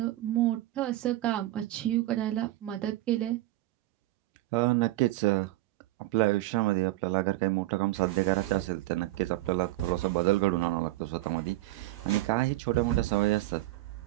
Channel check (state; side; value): quieter; left; 17.2 dB